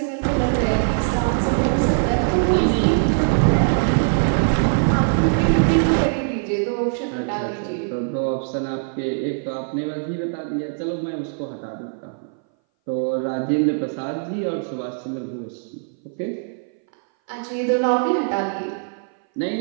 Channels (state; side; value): silent; left; 60 dB below the other